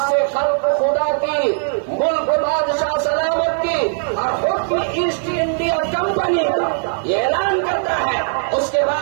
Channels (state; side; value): silent; left; digital silence